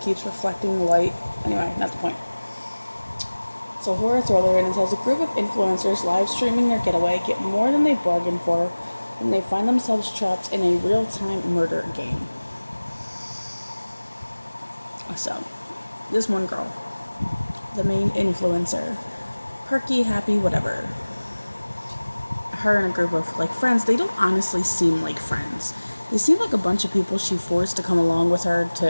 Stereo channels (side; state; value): both; inverted; correlation -1.00